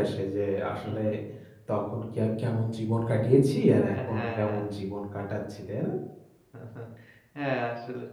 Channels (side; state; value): both; identical; correlation 1.00